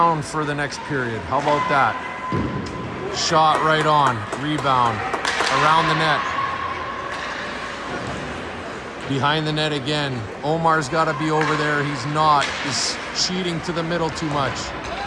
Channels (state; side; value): identical; both; correlation 1.00